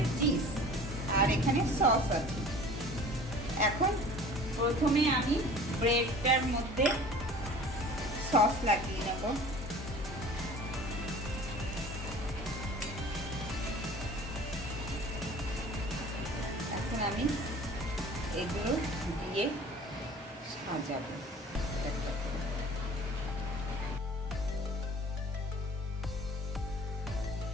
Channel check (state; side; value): normal; both; correlation 0.45